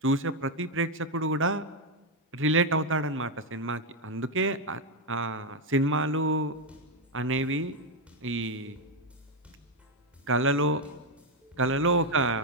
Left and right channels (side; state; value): both; normal; correlation 0.04